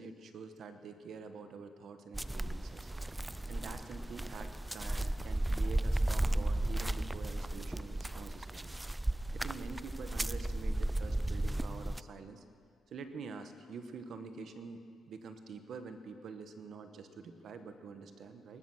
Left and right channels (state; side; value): normal; both; correlation 0.97